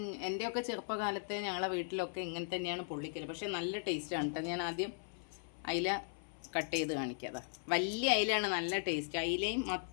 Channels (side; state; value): right; silent; 53 dB below the other